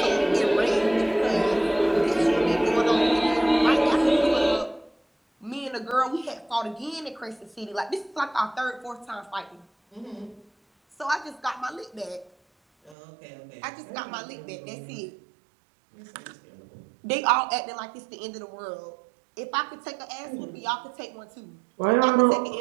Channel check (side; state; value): left; drops out; at 13.0 s